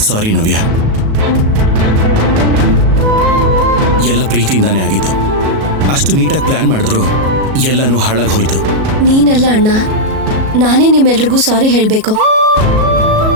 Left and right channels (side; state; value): left; late; 37 ms